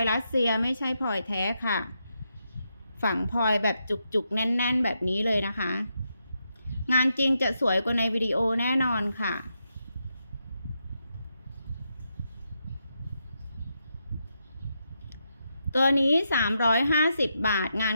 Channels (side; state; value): both; inverted; correlation -0.83